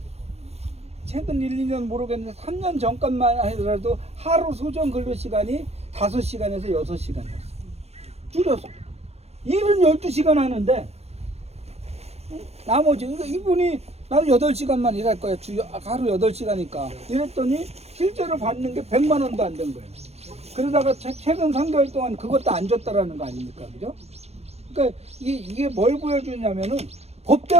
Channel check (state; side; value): late; left; 0.31 ms